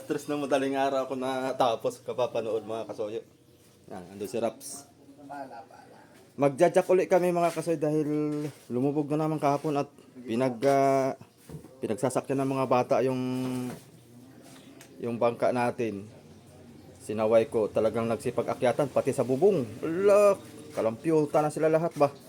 3 ng madaling araw ako natapos kapapanood mga kasoyo. Yan, ando si Raps. Magja-jack ulit kami mga kasoyo dahil lumubog na naman kahapon at pinagsasakyan ng mga bata yung bangka natin. Sinaway ko, talagang nagsipag-akyatan pati sa bubong. Ala, kalampyuta na sila lahat ba?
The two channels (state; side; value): identical; both; correlation 1.00